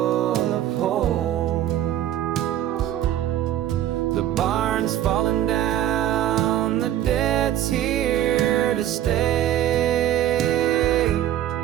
of holes. The barn's falling down, the debt's here to stay,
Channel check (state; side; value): quieter; left; 12.0 dB